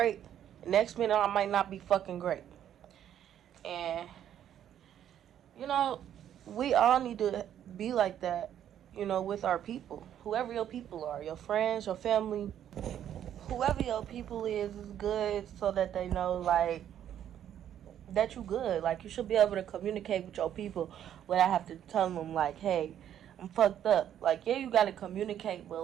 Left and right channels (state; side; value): quieter; left; 10.3 dB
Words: Next minute, I might not be fucking great. And, you know, we all need to be like that, you know, with our people. Whoever your people are, your friends, your family, whoever your people is good so that they know, like, that you good. Like, you should be able to communicate with your people without have to tell them, like, hey, I'm fucked up. Like, yeah, you gotta communicate, but,